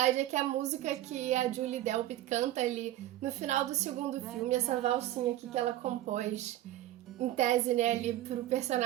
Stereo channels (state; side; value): quieter; left; 14.2 dB